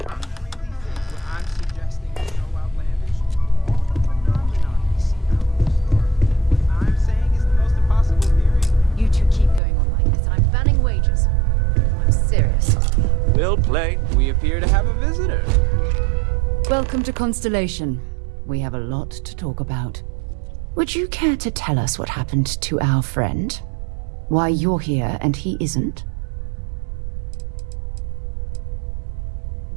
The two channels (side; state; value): left; drops out; at 9.6 s